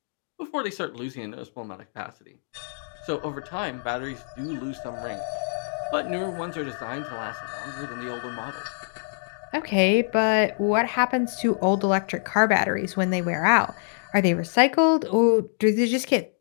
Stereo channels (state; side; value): silent; right; digital silence